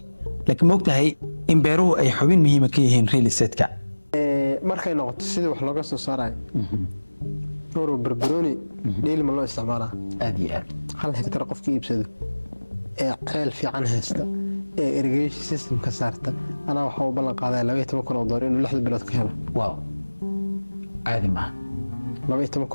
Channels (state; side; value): inverted; both; correlation -1.00